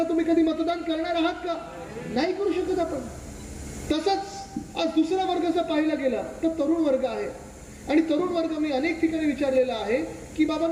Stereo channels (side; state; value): both; identical; correlation 1.00